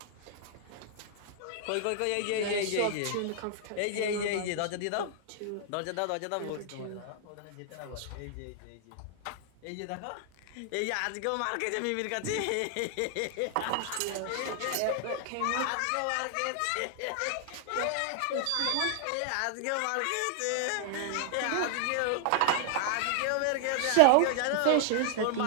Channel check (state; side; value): different; both; correlation 0.00